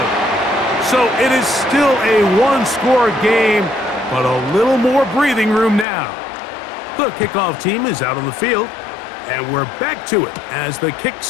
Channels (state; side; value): drops out; right; at 5.9 s